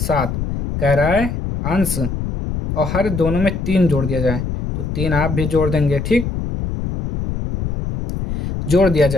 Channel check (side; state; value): left; noise; rumble, 4 dB below the sound